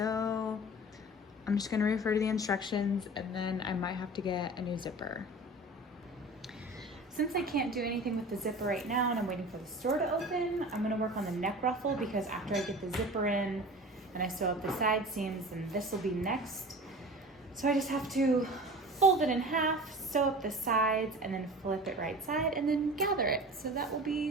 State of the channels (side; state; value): both; normal; correlation 0.38